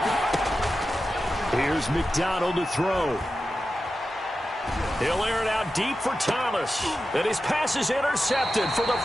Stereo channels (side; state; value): both; normal; correlation 0.92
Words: Here's McDonald to throw. He'll air it out deep for Thomas. And his pass is intercepted for the